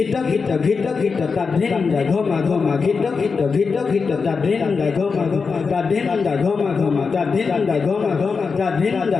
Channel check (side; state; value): right; quieter; 5.1 dB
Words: gita gita gita tadenda goma goma gita gita gita gita tadenda goma goma tadenda goma goma tadenda goma goma tadenda